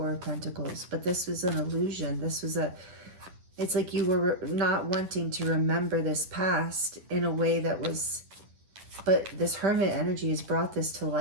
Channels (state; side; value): late; left; 10 ms